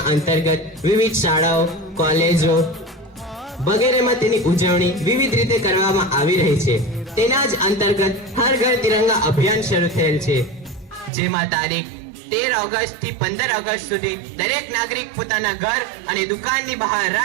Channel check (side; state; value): left; drops out; at 11.1 s